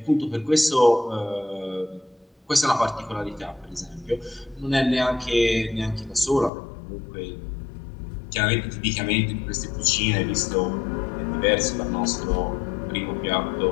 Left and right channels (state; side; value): drops out; right; at 6.5 s